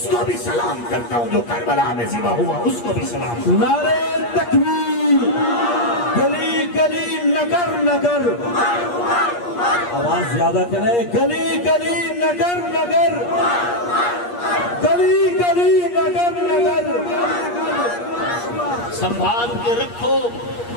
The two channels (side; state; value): right; late; 8.5 ms